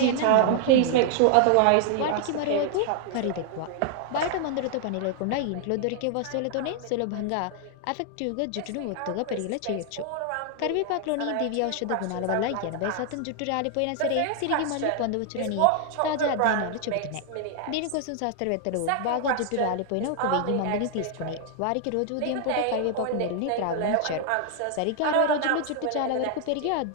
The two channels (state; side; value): different; both; correlation 0.00